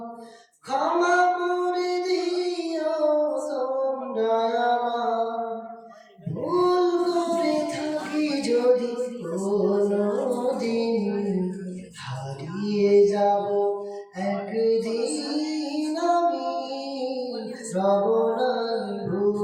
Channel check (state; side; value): identical; both; correlation 1.00